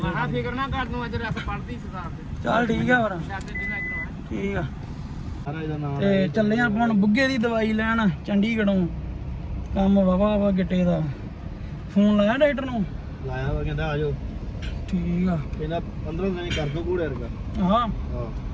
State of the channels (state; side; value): identical; both; correlation 1.00